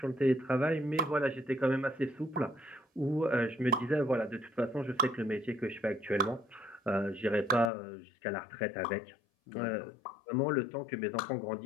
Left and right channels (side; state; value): right; drops out; at 7.7 s